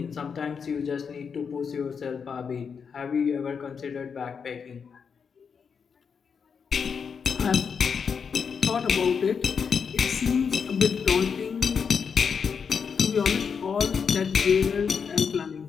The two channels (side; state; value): right; quieter; 6.3 dB